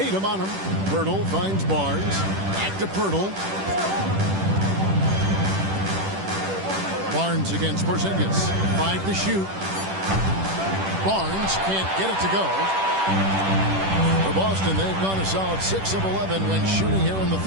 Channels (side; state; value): left; late; 10 ms